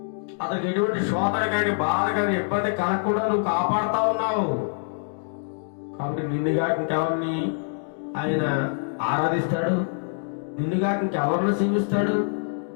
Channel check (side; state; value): right; silent; digital silence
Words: అతనికి ఎటువంటి శోధన కానీ, బాధ కానీ, ఇబ్బంది కలగకుండా నువ్వు కాపాడుతా ఉన్నావు. కాబట్టి నిన్నుగా ఇంకెవరిని ఆయన ఆరాధిస్తాడు? నిన్నుగా ఇంకెవరిని సేవిస్తాడు?